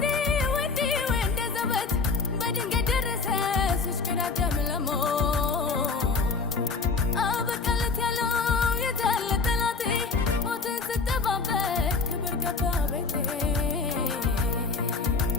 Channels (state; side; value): quieter; right; 4.4 dB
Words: ወንዴ ወንደ ዘበት በድንገት ደረሰ ሲሽከዳደም ለሞት አበቃለት ያለው የታለ ጠላቴ ሞትን ስጠባበቅ ክብር ገባ ቤቴ